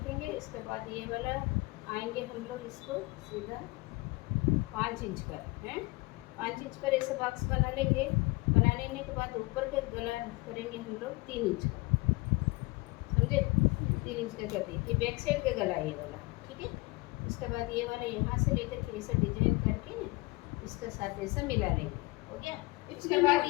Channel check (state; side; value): quieter; right; 24.0 dB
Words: इसके बाद ये वाला आएंगे हम लोग इसको सीधा 5 इंच पर, हैं 5 इंच पर ऐसा बॉक्स बना लेंगे। बना लेने के बाद ऊपर के गला करेंगे हम लोग 3 इंच का, समझे। 3 इंच का कर दिए, ये बैक साइड का गला है ये वाला, ठीक है। उसके बाद ये वाला यहाँ से लेकर के ऐसा डिजाइन करके ना इसके साथ ऐसा मिला लेंगे, हो गया। उसके बाद